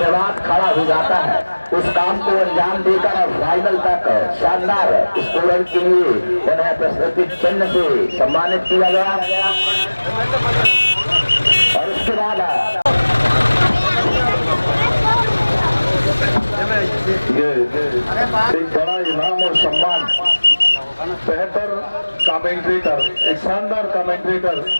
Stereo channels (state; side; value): inverted; both; correlation -1.00